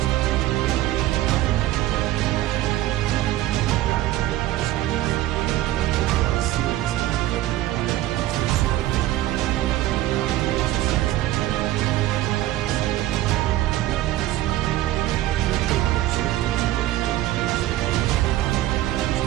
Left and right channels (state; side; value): quieter; left; 15.0 dB